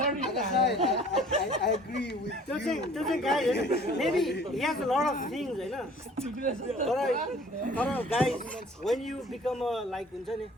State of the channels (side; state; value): both; normal; correlation 0.51